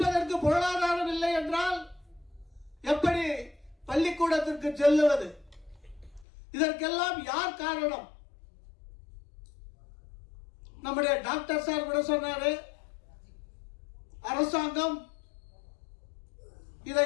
பொருளாதாரம் இல்லை என்றால் எப்படி பள்ளிக்கூடத்திற்கு செல்லுவது? இதற்கெல்லாம் யார் காரணம்? நம்முடைய டாக்டர் சார் கூட சொன்னாரு, அரசாங்கம்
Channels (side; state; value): right; drops out; at 6.2 s